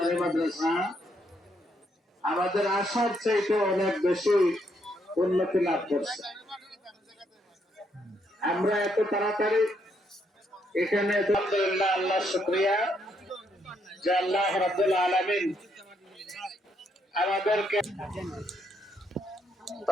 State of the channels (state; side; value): normal; both; correlation 0.74